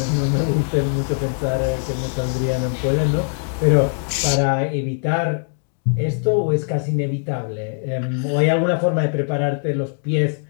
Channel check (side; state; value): right; silent; digital silence